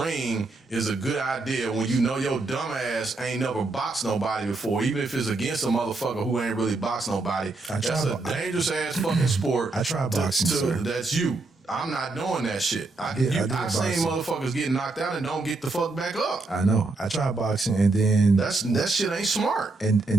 is a good idea when you know your dumb ass ain't never boxed nobody before, even if it's against a motherfucker who ain't really boxed nobody. That's a dangerous ass fucking sport. I tried boxing, sir. That's you. I'm not doing that shit. I've seen motherfuckers get knocked out and don't get the fuck back up. I know. I tried boxing, and then that shit ain't smart. And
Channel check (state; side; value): quieter; left; 3.4 dB